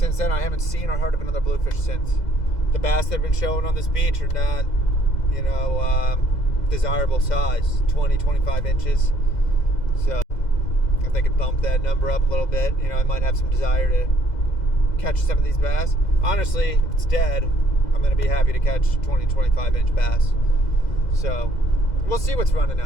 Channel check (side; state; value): right; late; 2.0 ms